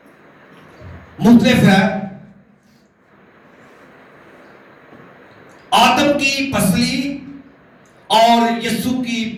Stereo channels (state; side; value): identical; both; correlation 1.00